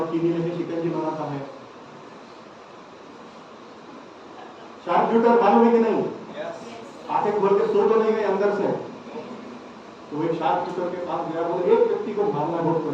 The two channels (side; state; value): both; identical; correlation 1.00